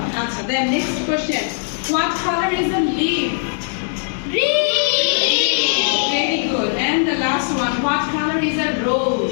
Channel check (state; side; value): silent; right; digital silence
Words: আচ্ছা, then next question. What color is a leaf? Very good. And the last one. What color is a